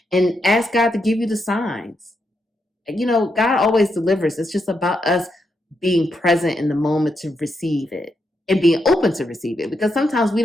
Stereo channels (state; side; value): normal; both; correlation 0.82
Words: And ask God to give you the signs. God always delivers. It's just about us being present in the moment to receive it and being open to receive it, because sometimes we